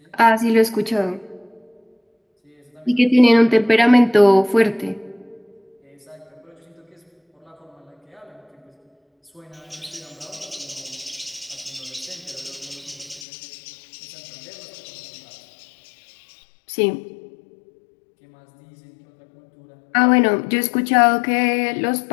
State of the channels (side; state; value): right; drops out; at 13.2 s